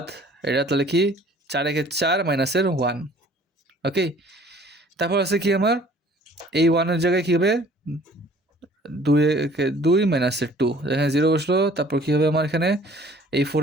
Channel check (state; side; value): normal; both; correlation 0.53